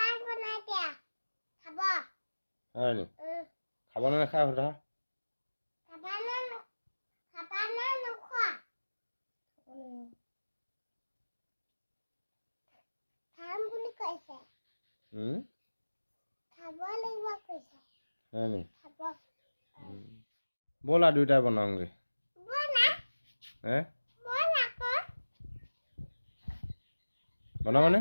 বনাই দিয়া খাব হয় নি খাব নে নাখায় সোধা খাবা না নোখোৱা খাম বুলি কৈছে খাব লাগিব কৈছে হয় নি খাব ব'লা দুইটাই বনাওঁগে বনা বনা আকৌ বনাবানে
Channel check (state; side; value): inverted; both; correlation -1.00